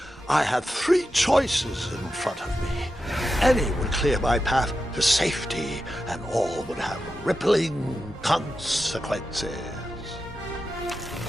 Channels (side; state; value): both; normal; correlation 0.90